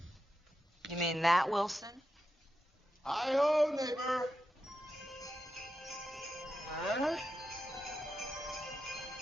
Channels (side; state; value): both; normal; correlation 0.88